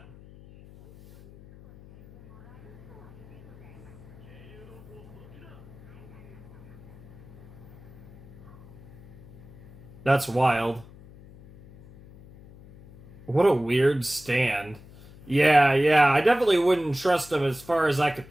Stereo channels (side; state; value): left; noise; hum, 20 dB below the sound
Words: That's wild. What a weird stand. Yeah, I definitely wouldn't trust him as far as I could